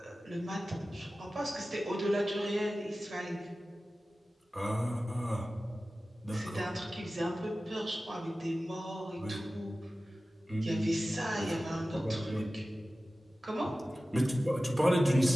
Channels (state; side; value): normal; both; correlation 0.96